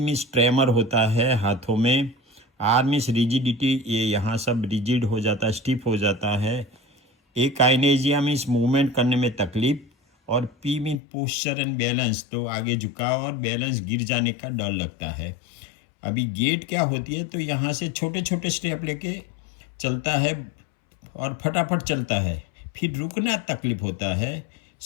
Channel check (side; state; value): right; drops out; at 11.0 s